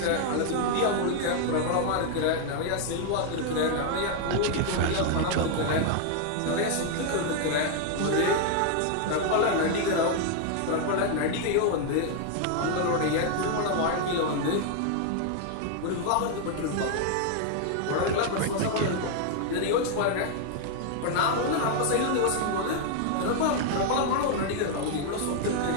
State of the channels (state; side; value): different; both; correlation 0.00